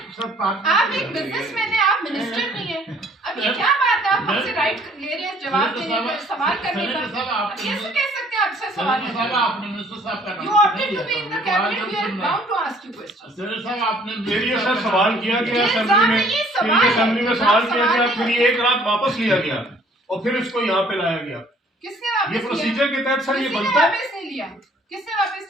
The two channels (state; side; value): normal; both; correlation 0.58